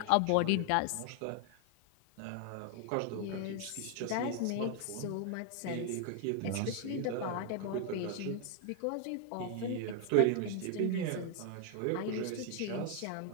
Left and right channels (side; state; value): both; different; correlation 0.00